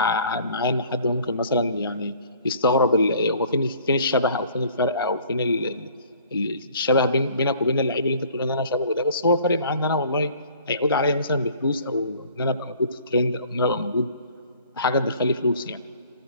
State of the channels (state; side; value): inverted; both; correlation -0.54